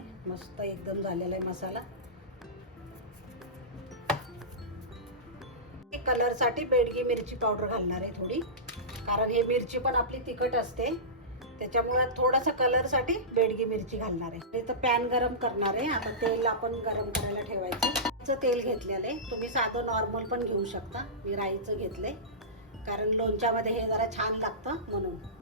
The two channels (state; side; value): normal; both; correlation -0.19